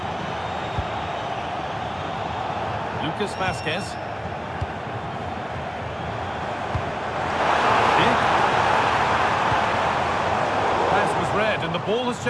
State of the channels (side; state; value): both; identical; correlation 1.00